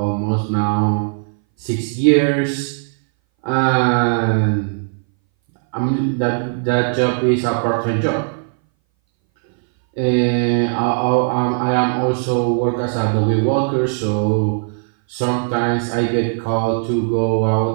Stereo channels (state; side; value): silent; left; 61 dB below the other